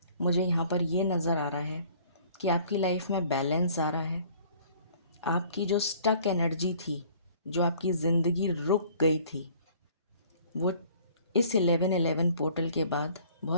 मुझे यहाँ पर ये नज़र आ रहा है कि आपकी लाइफ में बैलेंस आ रहा है। आपकी जो स्टक एनर्जी थी, जो आपकी ज़िंदगी रुक गई थी, वो इस 1111 पोर्टल के बाद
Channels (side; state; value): both; inverted; correlation -0.54